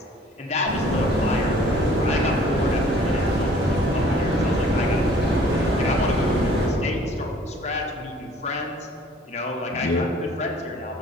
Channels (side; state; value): both; normal; correlation 0.54